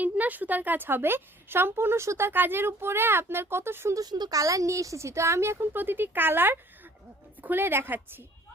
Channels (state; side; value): normal; both; correlation 0.54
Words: না, সুতার কাজ হবে, সম্পূর্ণ সুতার কাজের উপরে আপনার কত সুন্দর সুন্দর কালার নিয়ে এসেছি। তো আমি এখন প্রতিটি কালার খুলে দেখাচ্ছি।